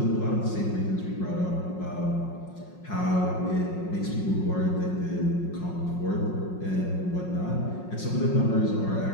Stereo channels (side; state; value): right; late; 5.5 ms